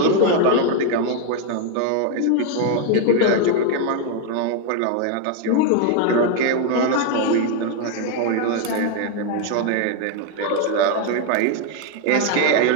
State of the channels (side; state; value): both; different; correlation 0.01